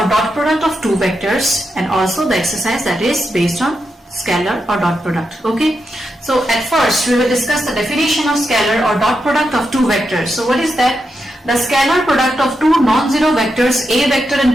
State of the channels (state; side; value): normal; both; correlation 0.86